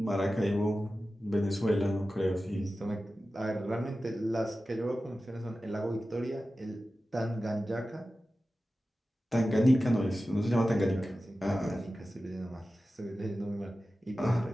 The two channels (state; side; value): normal; both; correlation 0.94